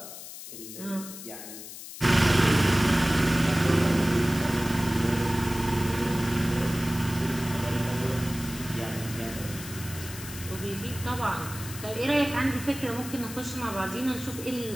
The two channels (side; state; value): left; noise; hiss, 12 dB below the sound